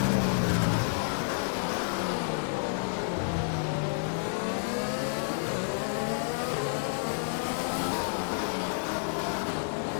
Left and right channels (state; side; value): silent; right; digital silence